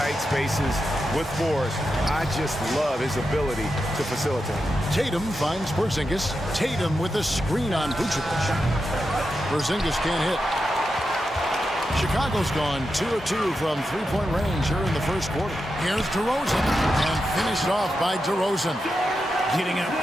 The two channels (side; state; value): both; normal; correlation 0.88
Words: spaces with force. I just love his ability to facilitate. Tatum finds Porzingis. Tatum with a screen on Vucevic. Porzingis can't hit. Chicago's gone 2 of 2 from three-point range here in the first quarter. Here's DeRozan. And finished off by DeRozan. Getting up